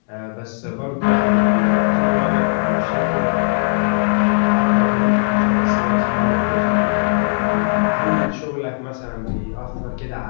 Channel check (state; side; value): silent; right; digital silence